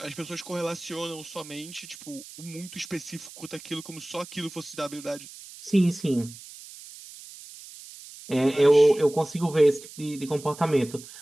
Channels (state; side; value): noise; right; hiss, 16 dB below the sound